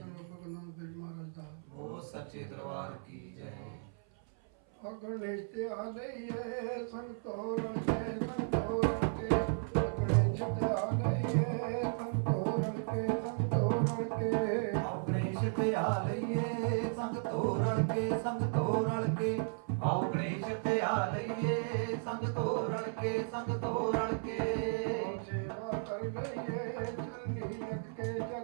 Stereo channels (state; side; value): silent; left; 55 dB below the other